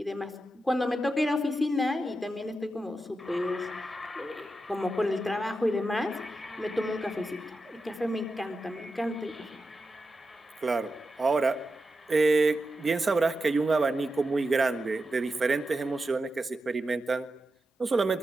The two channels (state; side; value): normal; both; correlation 0.89